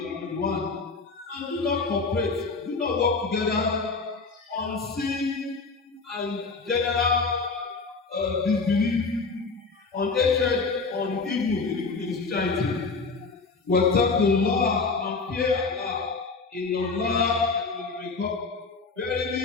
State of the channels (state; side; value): quieter; right; 4.3 dB